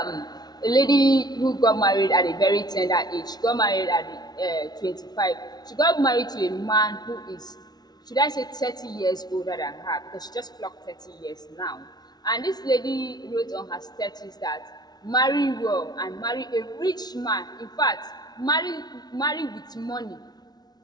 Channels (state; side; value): late; right; 0.19 ms